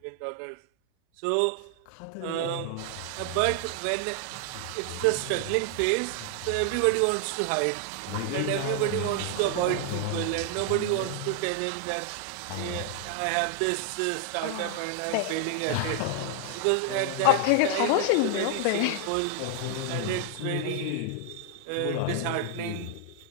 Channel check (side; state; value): both; different; correlation 0.00